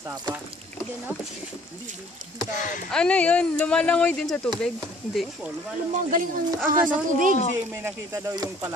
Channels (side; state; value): both; normal; correlation 0.55